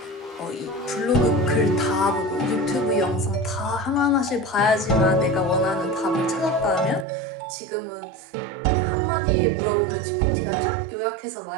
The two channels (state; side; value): drops out; left; at 7.1 s